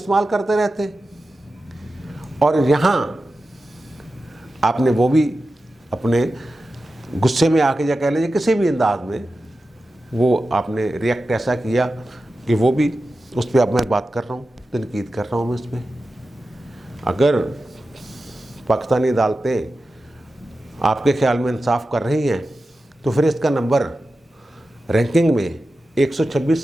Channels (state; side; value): normal; both; correlation 0.93